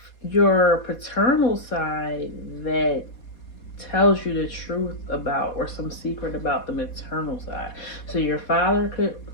your paternal side that tells you the truth about, or some secret about, the maternal side. So your father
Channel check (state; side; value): late; right; 4.2 ms